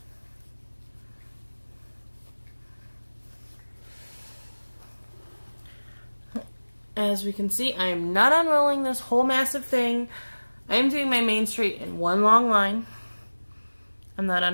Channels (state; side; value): inverted; both; correlation -1.00